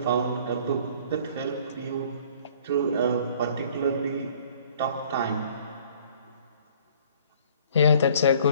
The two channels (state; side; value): inverted; both; correlation -0.54